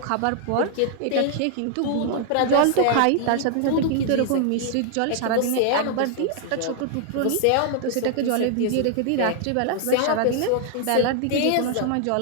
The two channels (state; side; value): different; both; correlation 0.00